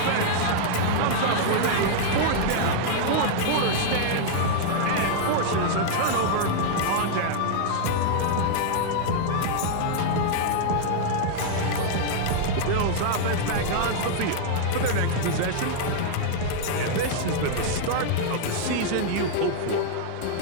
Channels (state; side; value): different; both; correlation -0.01